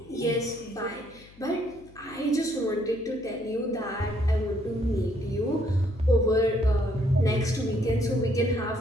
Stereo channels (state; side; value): noise; left; hum, 24 dB below the sound